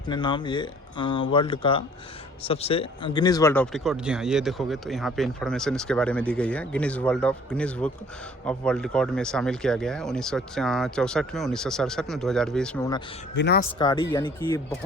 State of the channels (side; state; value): both; normal; correlation 0.54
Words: नाम, ये वर्ल्ड का सबसे गिनीज वर्ल्ड ऑफ रिकॉर्ड। जी हाँ, ये देखोगे तो यहाँ पे इन्फॉर्मेशन इसके बारे में दी गई है। Guinness book of world record में शामिल किया गया है 1964 में, 1967 में, 2020 में। विनाशकारी यानी कि